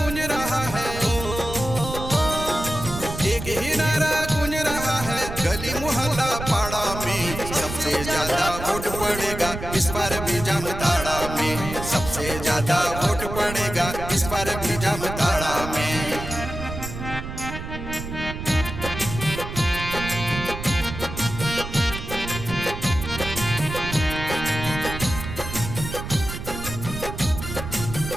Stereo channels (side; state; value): right; noise; rumble, 8 dB below the sound